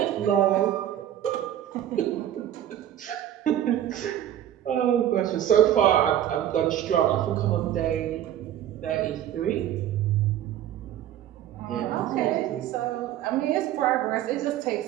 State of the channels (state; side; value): quieter; left; 11.5 dB